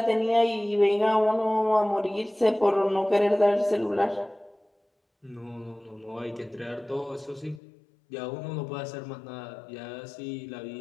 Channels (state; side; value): drops out; right; at 7.6 s